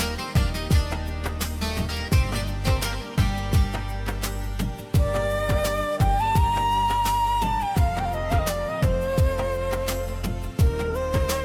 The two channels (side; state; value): both; identical; correlation 1.00